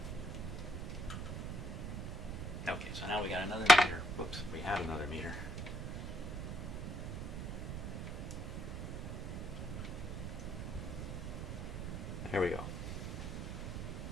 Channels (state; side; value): noise; right; rumble, 4 dB below the sound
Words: Okay, so now we got another meter. Whoops, we had another meter. There we go.